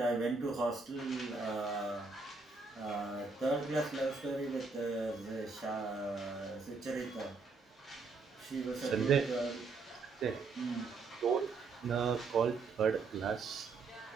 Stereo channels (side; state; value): left; quieter; 4.2 dB